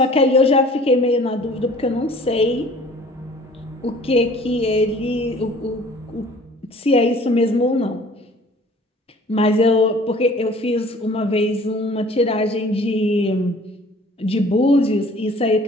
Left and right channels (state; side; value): normal; both; correlation 0.51